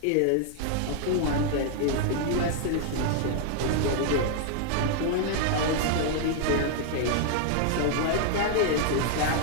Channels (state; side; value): different; both; correlation 0.00